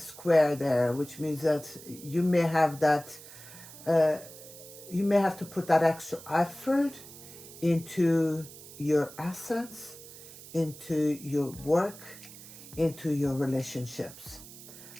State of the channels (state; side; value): noise; right; hiss, 17 dB below the sound